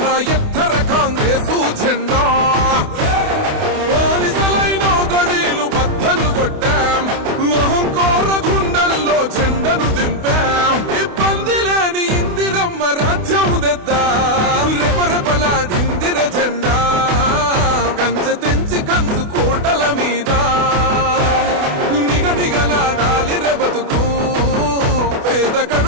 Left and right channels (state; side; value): late; left; 28 ms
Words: ఎత్తర కాంగ్రెసు జెండా బానిసలైన గడీలు బద్దలు కొట్టాం అహంకార గుండెల్లో జెండను దింపాం ఇబ్బంది లేని ఇందిరమ్మ రాజ్యం తెద్దాం రెపరెపలాడిందిర జెండా కంచె తెంచి కంచు కోటల మీద నిగనిగలాడాలి బతుకు పేద